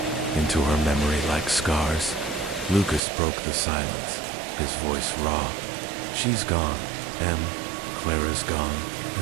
into her memory like scars. Lucas broke the silence, his voice raw. "She's gone, Em. Clara's gone,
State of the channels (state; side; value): drops out; left; at 3.0 s